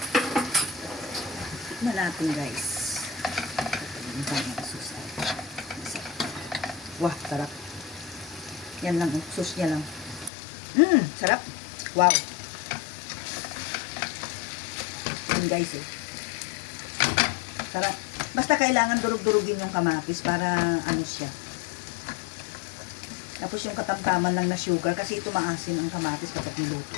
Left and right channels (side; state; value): right; drops out; at 10.3 s